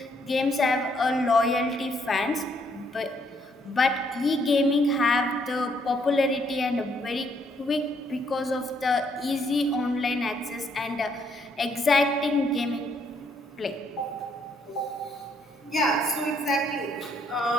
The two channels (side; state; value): both; normal; correlation 0.70